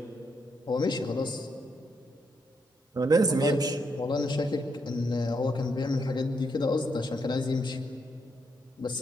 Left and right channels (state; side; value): normal; both; correlation 0.78